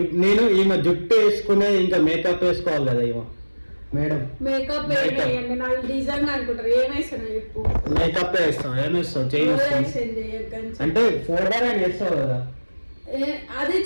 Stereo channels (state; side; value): inverted; both; correlation -1.00